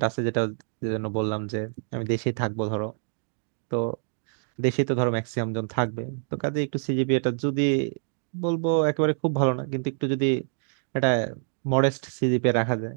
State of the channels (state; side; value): silent; left; digital silence